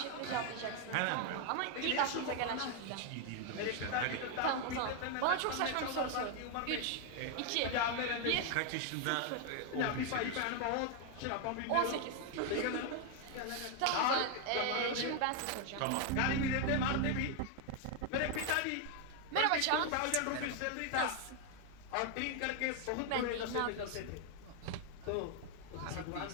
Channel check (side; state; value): both; different; correlation 0.01